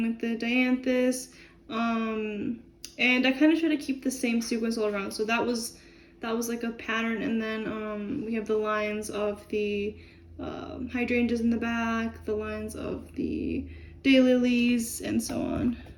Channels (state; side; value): identical; both; correlation 1.00